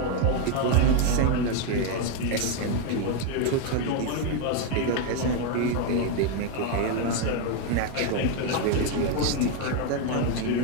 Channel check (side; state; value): both; different; correlation 0.01